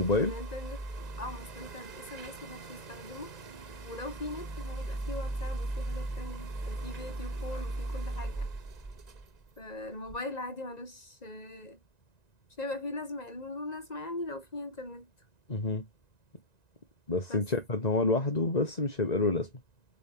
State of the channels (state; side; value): late; right; 1.9 ms